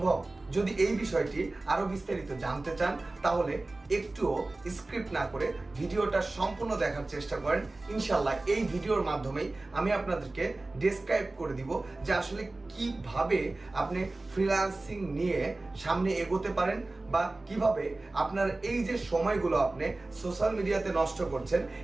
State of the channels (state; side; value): quieter; left; 3.0 dB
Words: যদি এই বিষয়টি আরো বিস্তারিত জানতে চান তাহলে একটুও স্ক্রিপ্ট না করে ভিডিওটা সম্পূর্ণ দেখার চেষ্টা করেন। ইনশাল্লাহ এই ভিডিওর মাধ্যমেই আমি আপনাদেরকে ডেসক্রাইব করে দিব যে আসলে কিভাবে আপনি ফ্রিল্যান্সিং নিয়ে সামনে এগোতে পারেন বা কিভাবে আপনার এই যে সময়গুলো আপনি সোশ্যাল মিডিয়াতে নষ্ট করছেন